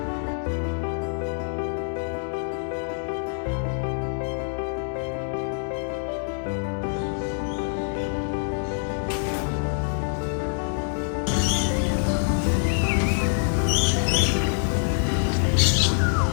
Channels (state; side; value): silent; right; digital silence